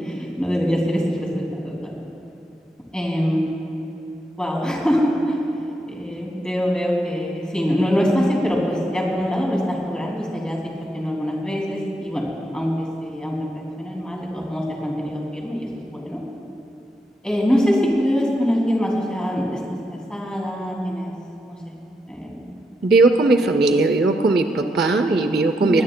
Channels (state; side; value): normal; both; correlation 0.82